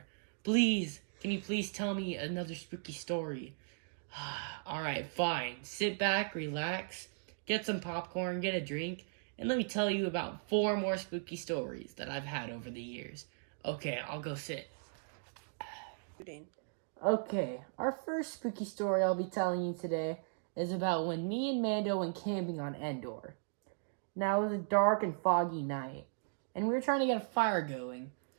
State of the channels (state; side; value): silent; left; digital silence